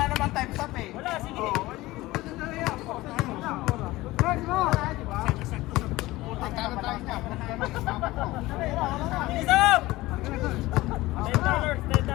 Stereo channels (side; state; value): right; quieter; 18.7 dB